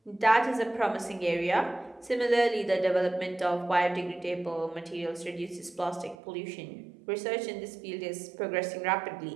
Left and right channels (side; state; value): left; drops out; at 6.2 s